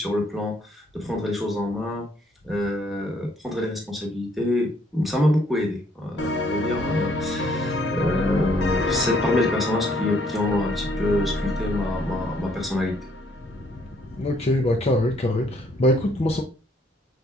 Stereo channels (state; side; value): normal; both; correlation 0.66